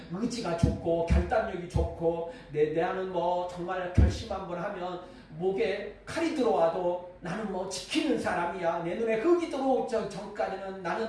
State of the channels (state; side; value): identical; both; correlation 1.00